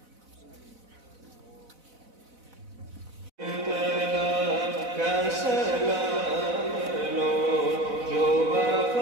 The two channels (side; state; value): left; late; 4.0 ms